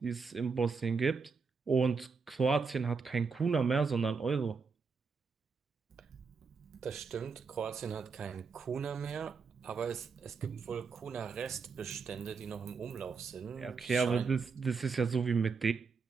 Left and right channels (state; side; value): quieter; left; 5.1 dB